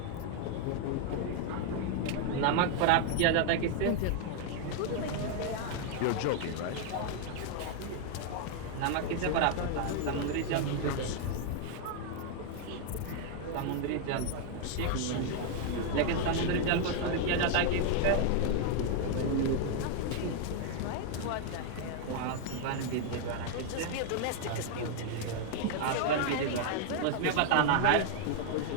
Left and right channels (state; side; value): different; both; correlation 0.00